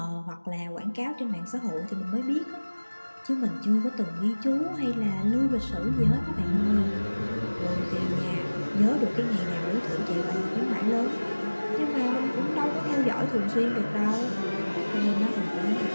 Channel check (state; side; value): inverted; both; correlation -1.00